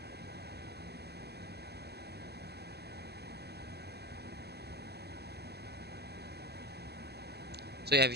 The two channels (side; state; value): left; late; 0.47 ms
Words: So yeah, we